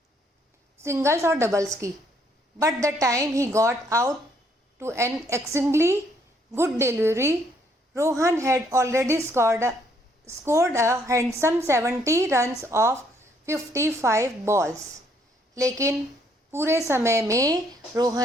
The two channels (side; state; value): both; normal; correlation 0.68